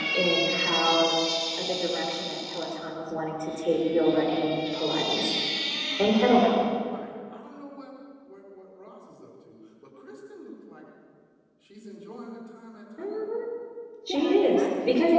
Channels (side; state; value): both; identical; correlation 1.00